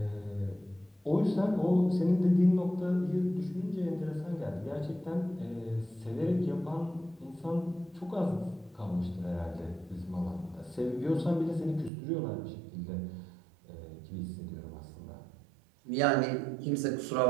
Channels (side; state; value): left; drops out; at 11.9 s